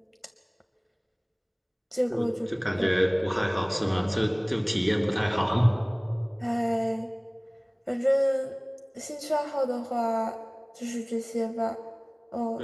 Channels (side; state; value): both; identical; correlation 1.00